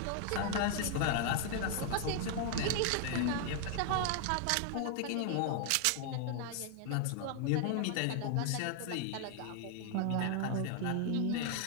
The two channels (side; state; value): both; different; correlation 0.00